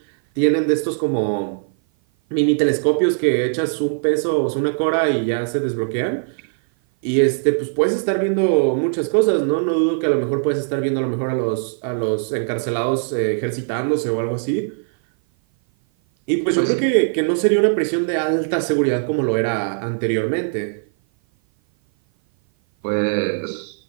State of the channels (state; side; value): silent; left; 56 dB below the other